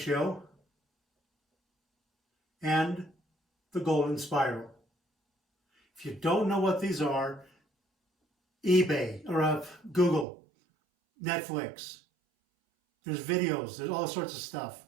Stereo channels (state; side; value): drops out; left; at 10.2 s